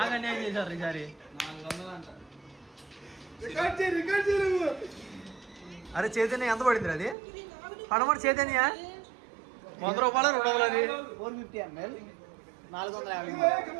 అన్యాయం చేశారు ఈసారి. అరే చైతన్య ఎంత పడింది అది? పడమటి చైతన్య 100 రూపాయలు 200 అది 450 ml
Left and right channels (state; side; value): drops out; left; at 7.2 s